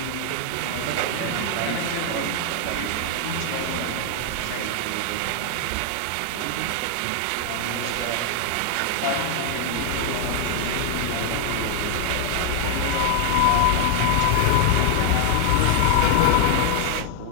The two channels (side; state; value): both; different; correlation 0.00